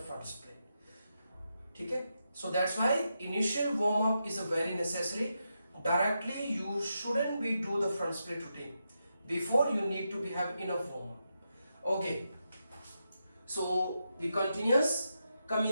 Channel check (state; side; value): inverted; both; correlation -0.85